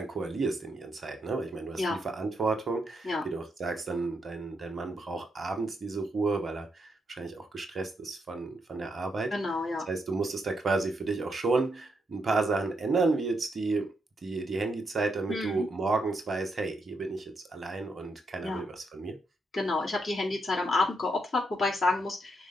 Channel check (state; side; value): normal; both; correlation 0.80